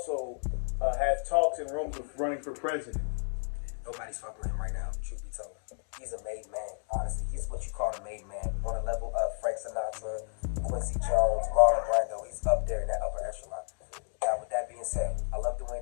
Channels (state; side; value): silent; right; digital silence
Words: has talks and rooms of running for president. Nobody's fucking with him right now, truth be told. He's a made man, honestly. He's what you call a made man. On a level of Frank Sinatra, Quincy Jones, Marlon Brando. He's up there in that upper echelon. Now, with that being said, I love